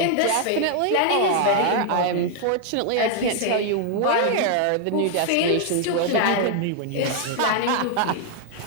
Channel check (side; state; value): both; different; correlation 0.00